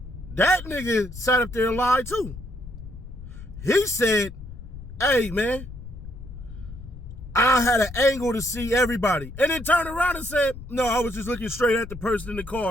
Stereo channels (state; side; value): noise; left; rumble, 13 dB below the sound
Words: that nigga sat up there and lied too. He said, hey, man, I had an angle to see everybody. And then turned around and said, no, I was just looking straight at the person in the